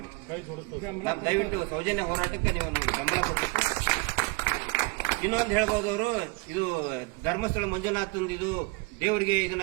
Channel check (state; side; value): quieter; left; 28.3 dB